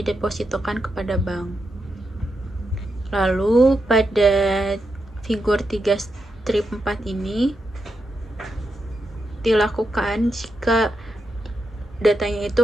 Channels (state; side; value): normal; both; correlation 0.85